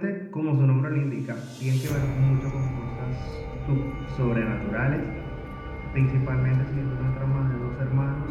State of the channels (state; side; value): identical; both; correlation 1.00